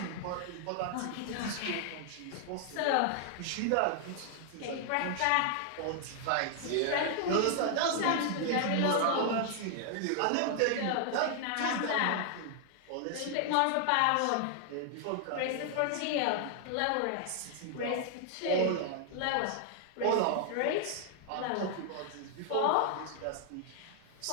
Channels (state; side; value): different; both; correlation 0.00